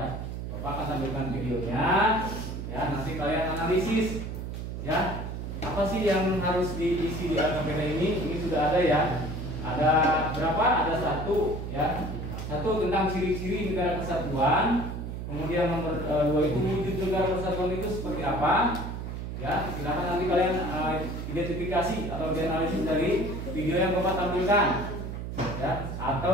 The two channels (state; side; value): noise; right; hum, 6 dB below the sound